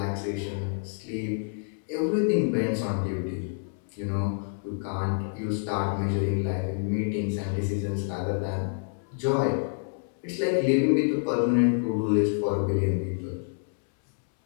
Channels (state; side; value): silent; right; 60 dB below the other